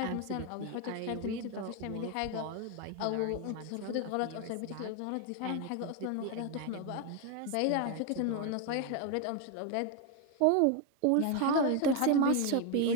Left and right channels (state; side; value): different; both; correlation 0.01